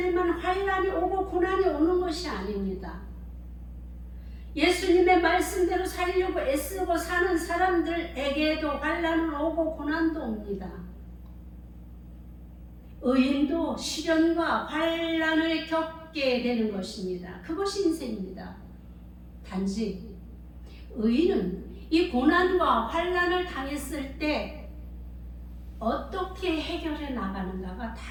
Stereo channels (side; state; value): both; identical; correlation 1.00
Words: 환난이 오고 고난이 오는 것이 아닙니다. 예수님의 말씀대로 살려고 애쓰고 사는 사람들에게도 환난은 오고 고난도 옵니다. 의인도 시련과 환난을 겪게 되는 것입니다. 그것이 인생입니다. 단지 의인은 이 고난과 환난을 당했을 때 어떻게 해결해 나가는가가